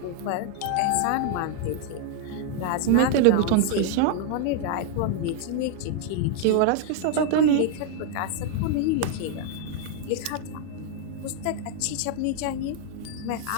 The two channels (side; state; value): both; different; correlation 0.00